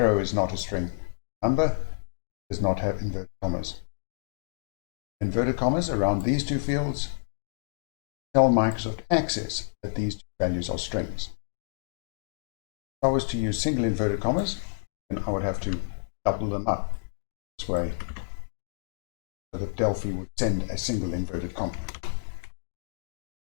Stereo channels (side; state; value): right; silent; digital silence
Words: is not a string. Number does not have inverted commas. Inverted commas around these two fields tell Microsoft Access that these two values are strings. If I was to use single inverted commas, then I would have to double them up this way, so that Delphi would send a single inverted comma.